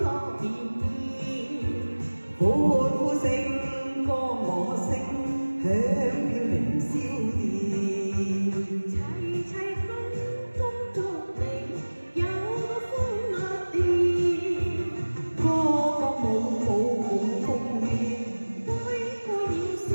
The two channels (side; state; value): both; inverted; correlation -1.00